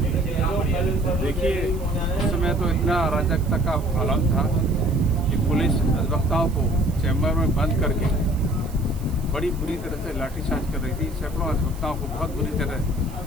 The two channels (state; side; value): noise; right; hiss, 21 dB below the sound